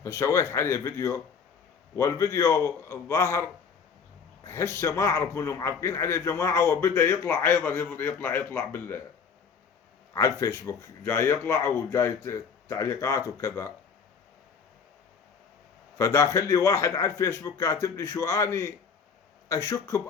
فسويت عليه فيديو، والفيديو الظاهر هسه ما أعرف منهم معلقين عليه جماعة، وبدأ يطلع أيضا يطلع على الفيسبوك، جاي يطلع وجاي تعليقات وكذا. فداخل لي واحد على الفيسبوك كاتب لي شو اني اشك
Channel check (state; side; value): quieter; right; 6.0 dB